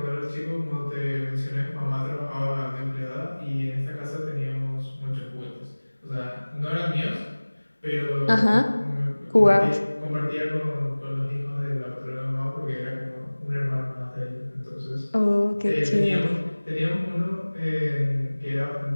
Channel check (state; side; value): inverted; both; correlation -1.00